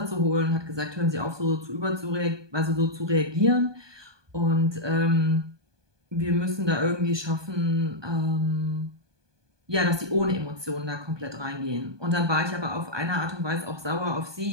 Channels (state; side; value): late; left; 1.2 ms